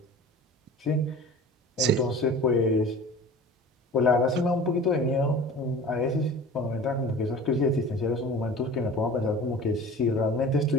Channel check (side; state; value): both; normal; correlation 0.39